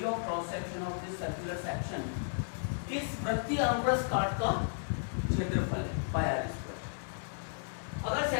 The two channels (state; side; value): silent; right; digital silence